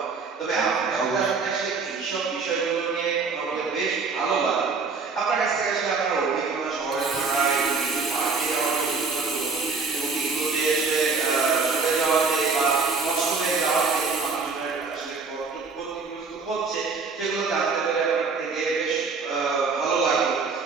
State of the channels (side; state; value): left; quieter; 4.6 dB